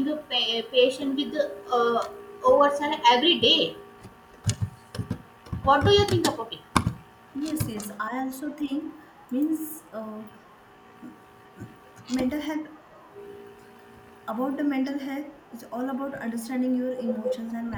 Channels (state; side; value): identical; both; correlation 1.00